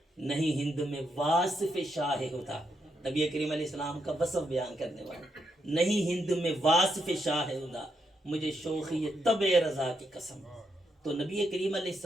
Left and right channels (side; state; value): both; normal; correlation 0.80